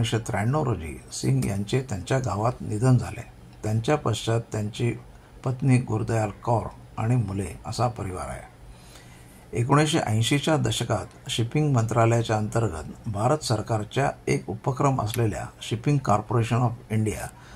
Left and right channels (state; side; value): identical; both; correlation 1.00